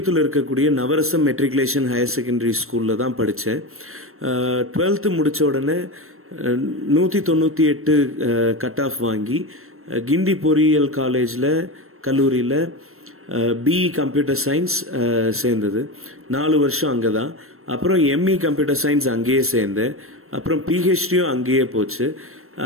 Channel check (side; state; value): left; late; 0.62 ms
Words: இருக்கக்கூடிய நவரசம் மெட்ரிகுலேஷன் ஹையர் செகண்டரி ஸ்கூலில் தான் படித்தேன். 12th முடித்த உடனே 198 கட் ஆஃப் வாங்கி கிண்டி பொறியியல் கல்லூரியில் பிஇ கம்ப்யூட்டர் சயின்ஸ் சேர்ந்தது. 4 வருஷம் அங்கே தான். அப்புறம் எம்இ கம்ப்யூட்டர் சயின்ஸ் அங்கேயே சேர்ந்தேன். அப்புறம் பிஹெச்டியும் அங்கேயே போச்சு.